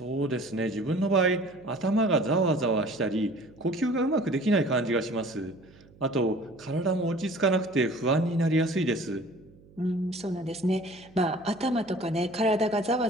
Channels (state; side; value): noise; right; hum, 25 dB below the sound